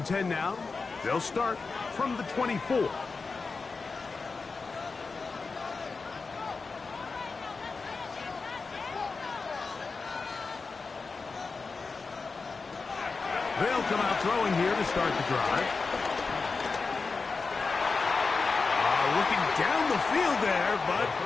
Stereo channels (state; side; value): quieter; right; 4.4 dB